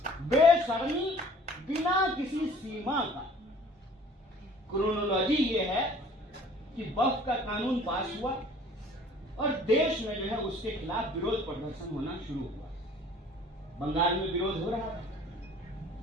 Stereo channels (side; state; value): both; normal; correlation 0.51